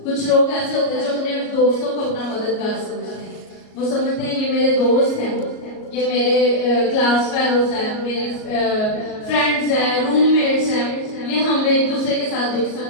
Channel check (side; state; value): right; late; 38 ms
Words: कुछ लोग ऐसे होते हैं जो अपने दोस्तों को अपना मददगार समझते हैं। वो समझते हैं ये मेरे दोस्त हैं, ये मेरे क्लास फेलोज हैं, मेरे फ्रेंड्स हैं, रूममेट्स हैं, ये हम एक दूसरे के साथ दुख